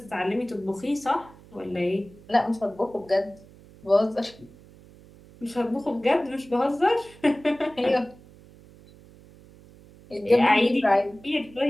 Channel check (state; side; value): noise; right; hum, 23 dB below the sound